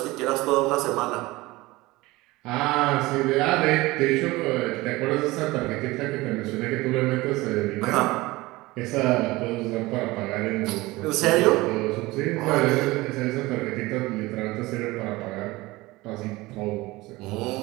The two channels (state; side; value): quieter; left; 20.5 dB